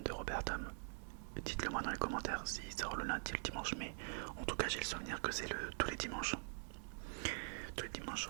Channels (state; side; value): silent; left; digital silence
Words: Robertum, dites-le moi dans les commentaires s'il sort le lundi ou le dimanche, mais en tout cas j'ai le souvenir que c'est tous les dimanches